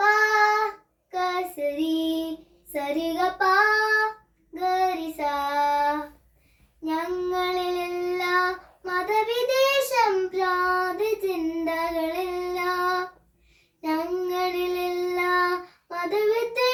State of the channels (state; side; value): identical; both; correlation 1.00